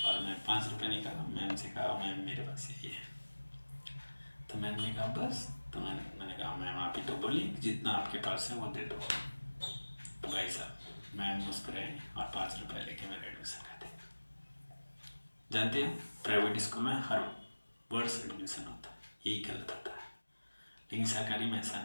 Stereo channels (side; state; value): both; inverted; correlation -1.00